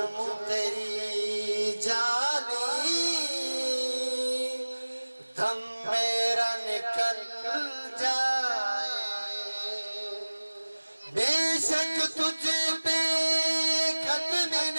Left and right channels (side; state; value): both; inverted; correlation -1.00